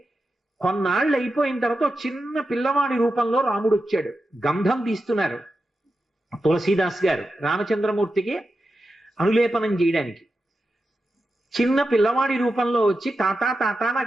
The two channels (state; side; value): normal; both; correlation 0.90